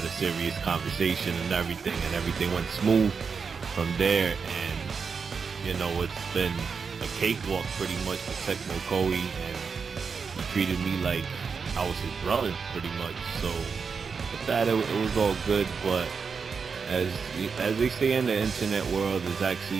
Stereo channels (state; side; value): quieter; left; 5.6 dB